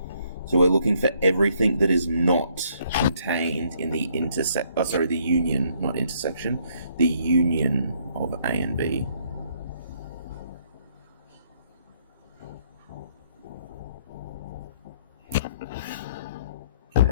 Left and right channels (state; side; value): inverted; both; correlation -0.67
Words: So we're looking for everything that is not contained in the the union, not intersection, the union of A and B.